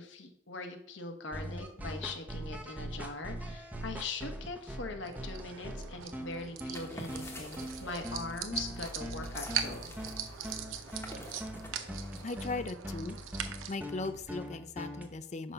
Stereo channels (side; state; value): both; normal; correlation 0.38